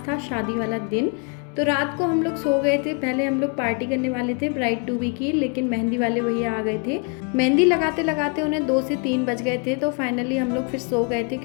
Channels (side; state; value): right; quieter; 36.0 dB